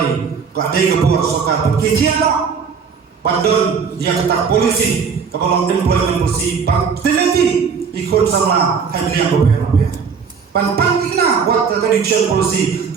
kadai ke buat soka kijian pandon dia kata polisi kalau employment polisi bang teliti ikut sama handling repair pantang kena buat tradition polisi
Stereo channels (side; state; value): left; quieter; 6.1 dB